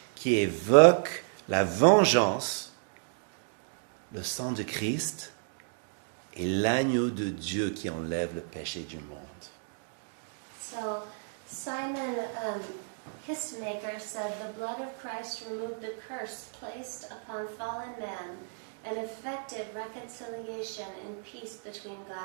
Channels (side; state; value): left; silent; digital silence